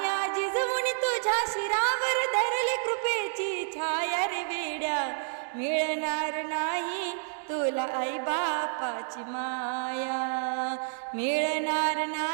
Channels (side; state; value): left; silent; digital silence